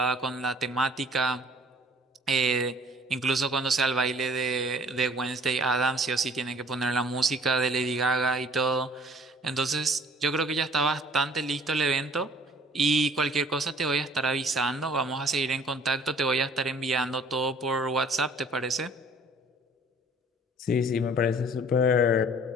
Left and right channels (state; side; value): normal; both; correlation 0.54